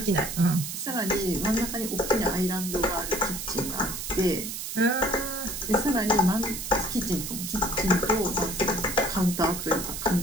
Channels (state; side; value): noise; right; hiss, 6 dB below the sound